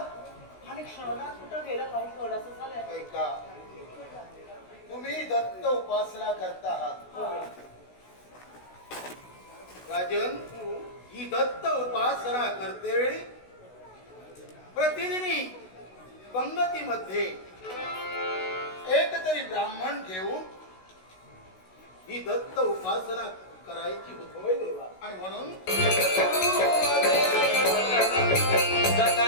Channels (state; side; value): late; right; 16 ms